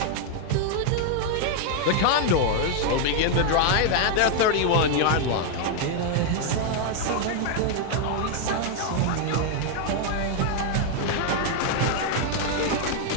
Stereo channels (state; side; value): different; both; correlation 0.00